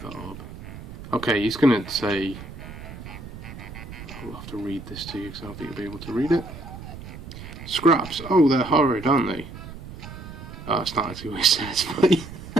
that orb. Okay, he's going to say, I'll have to read this to you because I don't think you'll be able to read it. Scraps, oh they're horrid, aren't they? Oh, that's not actually what it says, but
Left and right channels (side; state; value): right; noise; rumble, 13 dB below the sound